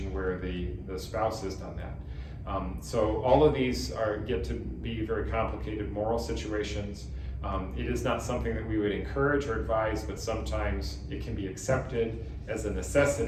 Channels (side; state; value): both; identical; correlation 1.00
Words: where the spouse has done that. So all of these get to be very complicated moral situations. It is not something that we would encourage or advise, but sometimes it can be accepted as a